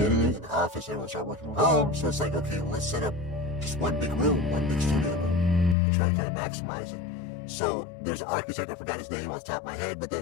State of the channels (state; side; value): drops out; right; at 5.8 s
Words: editing in the office. Everyone started working from home, so it's like, okay, well, let's set up just one big room, one big studio room, and try to kind of maximize it. So there's an architect, I forgot his name off the top of my head, but